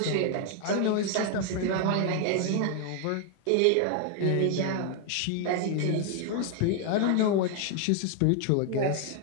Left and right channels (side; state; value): both; different; correlation 0.00